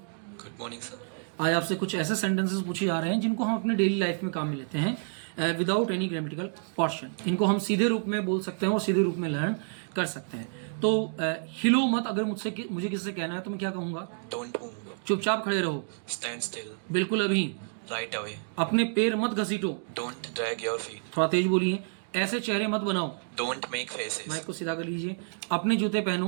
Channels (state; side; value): silent; left; digital silence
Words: Good morning sir. आज आपसे कुछ ऐसे सेंटेंसेस पूछे जा रहे हैं जिनको हम अपने डेली लाइफ में काम में लेते हैं विदाउट एनी ग्रामेटिकल पोर्शन। इनको हम सीधे रूप में बोल सकते हैं और सीधे रूप में लर्न कर सकते हैं। तो हिलो मत अगर मुझे किससे कहना है तो मैं क्या कहूँगा? Don't move. चुपचाप खड़े रहो। Stand still. बिल्कुल अभी। Right away. अपने पैर मत घसीटो। Don't drag your feet. थोड़ा तेज बोलिए। ऐसे चेहरे मत बनाओ। Don't make faces. माइक को सीधा कर लीजिए। अपने जूते